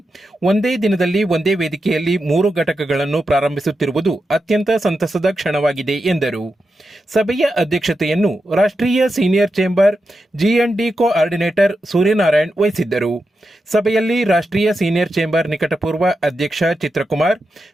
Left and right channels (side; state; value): both; normal; correlation 0.88